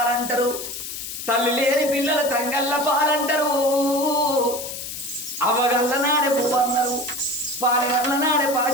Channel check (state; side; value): noise; left; hiss, 8 dB below the sound